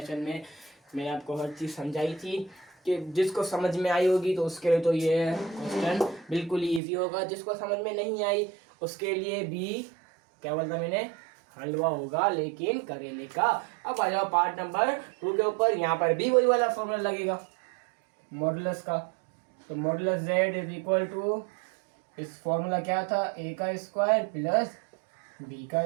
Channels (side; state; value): left; drops out; at 6.8 s